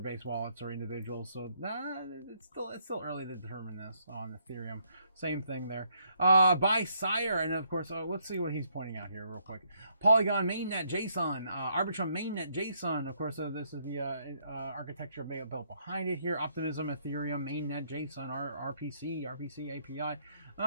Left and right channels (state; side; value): inverted; both; correlation -0.71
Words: wallets or individuals. So it's still early to determine this on Ethereum. Same thing there. By Sire, and of course, let's see what he's pointing out here real quick. Polygon mainnet JSON, Arbitrum mainnet JSON. Of course, this is the architecture built behind it here. Optimism Ethereum mainnet JSON RPC API.